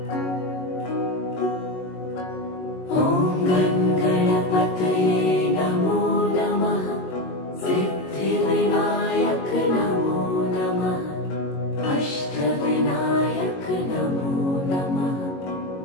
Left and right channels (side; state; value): right; late; 22 ms